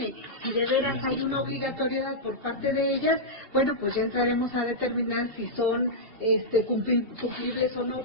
si de veras hay una obligatoriedad por parte de ellas, bueno, pues ya entraremos a determinar si son cumplibles o no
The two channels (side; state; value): left; late; 2.7 ms